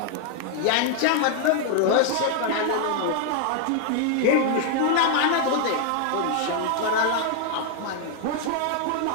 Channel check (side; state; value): both; different; correlation 0.00